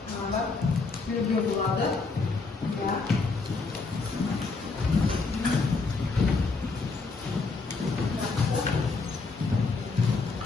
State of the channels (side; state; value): right; quieter; 4.1 dB